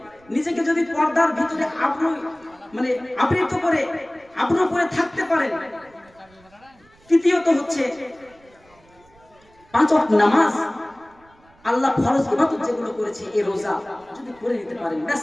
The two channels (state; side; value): noise; right; rumble, 30 dB below the sound